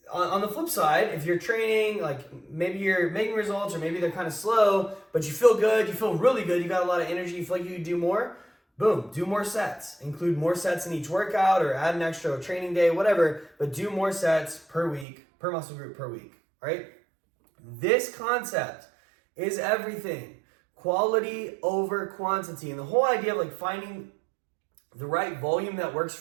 on the flip side, if you're training, like maybe you're making results or maybe they're kind of slow, but you feel good, you feel really good, you got a lot of energy, you feel like you could do more, boom, do more sets. Include more sets in each workout or add an extra training day, whatever, but do more sets per week, per muscle group per week, all right? This concept is everything. Quality over quantity. And the whole idea of like finding the right volume that works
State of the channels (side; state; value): left; drops out; at 15.1 s